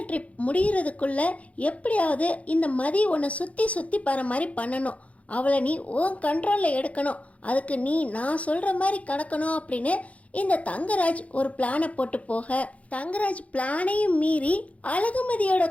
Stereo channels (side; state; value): right; late; 0.066 ms